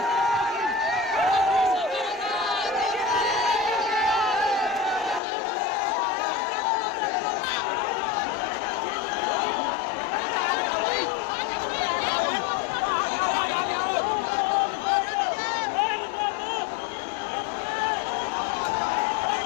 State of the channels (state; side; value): drops out; right; at 5.2 s